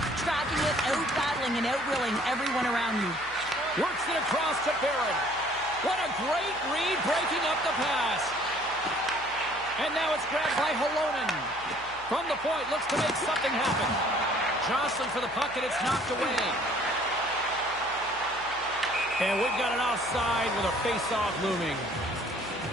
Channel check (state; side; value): noise; left; hum, 22 dB below the sound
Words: tracking it, out-battling and out-willing everyone around you. Works it across to Barron. What a great read, breaking up the pass. And now it's grabbed by Halonen. From the point, looks to make something happen. Jostling for the puck, and it's knocked away. And we've got an offside with a face-off looming.